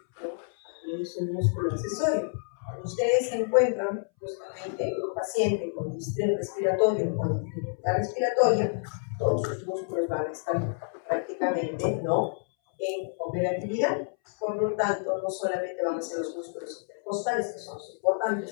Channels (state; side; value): silent; right; 59 dB below the other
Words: ¿no?, es un músculo accesorio. Cuando ustedes encuentran justamente un paciente con distrés respiratorio o con dificultad respiratoria, todos sus músculos van a estar prácticamente, ¿no?, en operatividad. Por lo tanto, no solamente van a ser los músculos intercostales, que son los